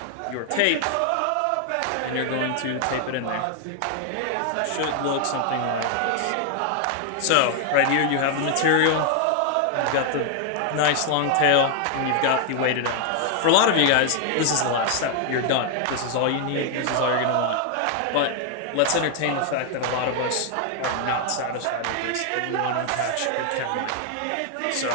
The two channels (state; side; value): different; both; correlation 0.00